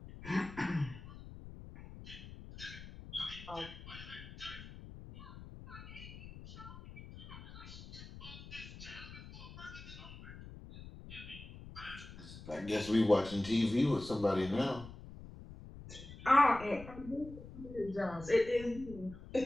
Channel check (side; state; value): left; noise; rumble, 14 dB below the sound